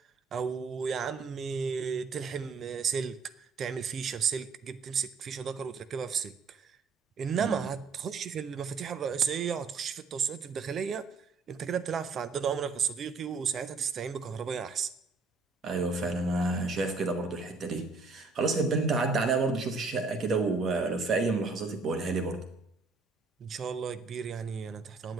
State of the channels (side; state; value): left; quieter; 4.4 dB